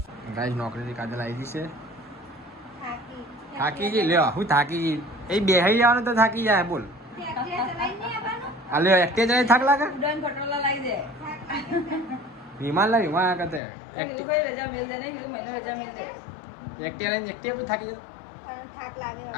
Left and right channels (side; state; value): right; drops out; at 13.6 s